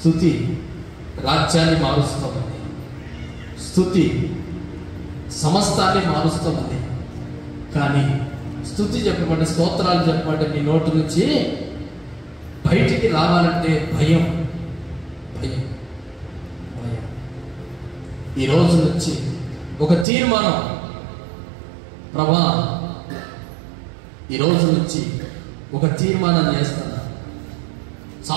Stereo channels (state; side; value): drops out; left; at 20.1 s